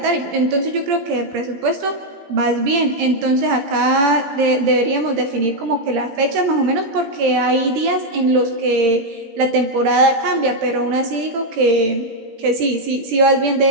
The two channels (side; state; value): left; late; 18 ms